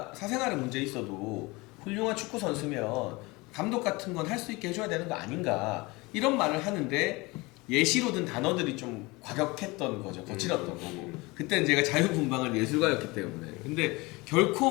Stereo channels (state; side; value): quieter; right; 23.9 dB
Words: 사생활에 문제 있어도 훌륭한 축구 선수면 감독 같은 건 할 수 있게 해줘야 되는 거 아닌가, 이런 말을 하는데 예시로 든 단어들이 좀 과격했던 거죠. 거칠었던 거고. 그때는 제가 자유분방한 예술가였기 때문에. 근데